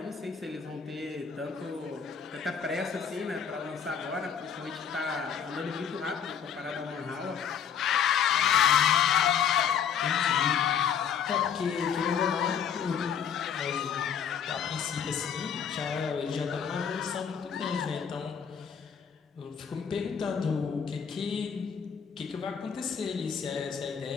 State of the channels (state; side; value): quieter; right; 7.6 dB